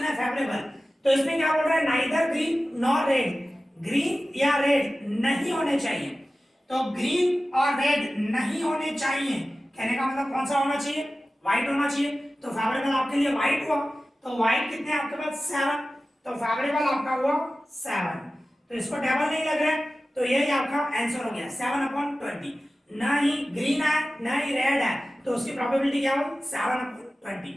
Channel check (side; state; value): both; normal; correlation 0.95